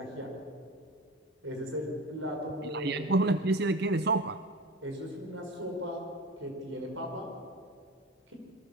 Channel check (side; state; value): both; normal; correlation 0.32